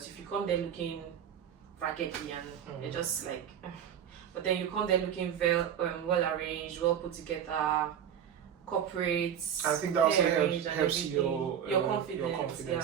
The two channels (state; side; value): quieter; left; 9.0 dB